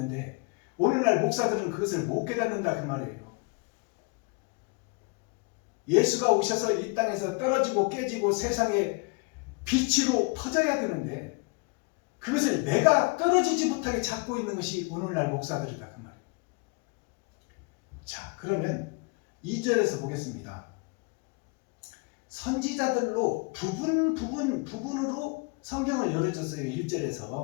오늘날 목사들은 그것을 못 깨닫는다 그 말이에요. 예수가 오셔서 이 땅에서 떨어지고 깨지고 세상에 빛으로 퍼져야 되는데 그것을 내가 떨어지지 못하게 잡고 있는 것이 오늘날 목사들이다 그 말이에요. 자, 그러면 2절에서 보겠습니다. 선지자들로 부분으로 성경을 열어줬어요.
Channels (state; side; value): quieter; right; 30.3 dB